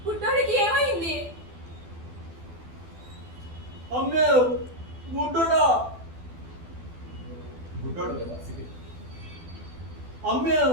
బుడ్డోడికి ఏమైంది? అమ్మే బుడ్డోడా, గుడ్డోడు కదా. అమ్మే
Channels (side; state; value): left; late; 12 ms